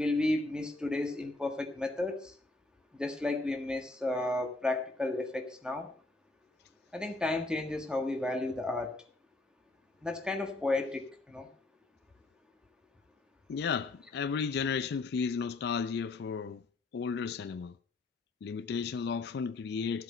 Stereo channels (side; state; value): right; quieter; 3.1 dB